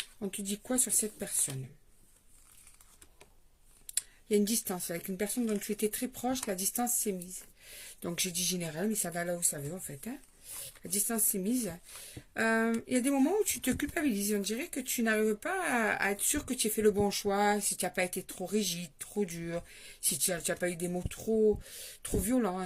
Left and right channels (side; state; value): both; identical; correlation 1.00